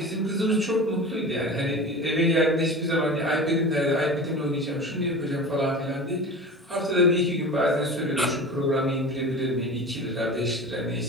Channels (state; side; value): normal; both; correlation 0.33